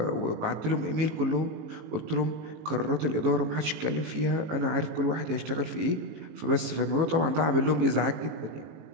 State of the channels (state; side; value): late; left; 18 ms